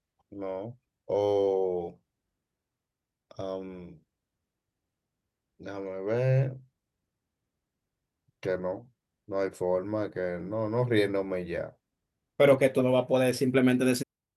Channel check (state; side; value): identical; both; correlation 1.00